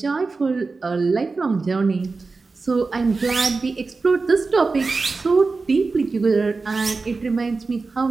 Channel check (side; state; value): left; quieter; 4.0 dB